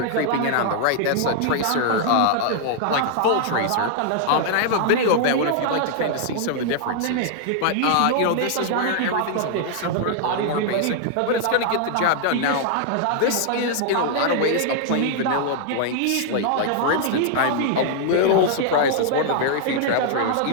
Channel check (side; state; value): both; different; correlation -0.01